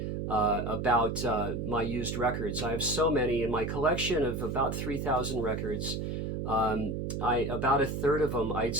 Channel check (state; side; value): noise; right; hum, 3 dB below the sound